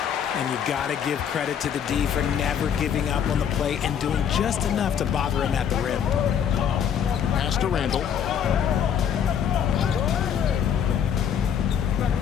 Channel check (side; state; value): right; quieter; 8.4 dB